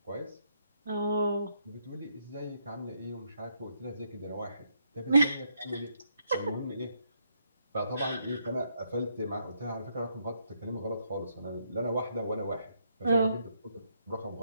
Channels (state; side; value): inverted; both; correlation -0.76